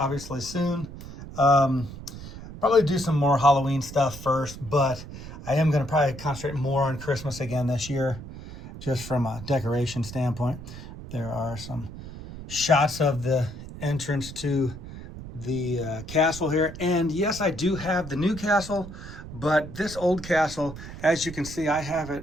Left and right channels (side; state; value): right; noise; rumble, 12 dB below the sound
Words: soon. Probably do some more Halloween stuff first, but I am going to probably concentrate more on Christmas again this year, just from a decoration standpoint. There are some shots of the entrance to the castle here. And yes, I do have the new castle, but this old castle, as you can see, I have